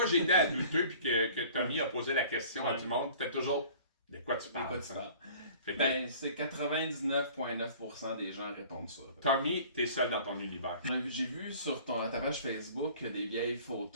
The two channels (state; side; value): inverted; both; correlation -0.48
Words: que j'ai été à douteux puis que Tommy a posé la question à du monde, c'était toujours de quoi tu parles. Ben, c'est 99,9% des gens répondent ça. Tommy, t'es seul dans ton univers. J'ai vu sur ta page Facebook des vieilles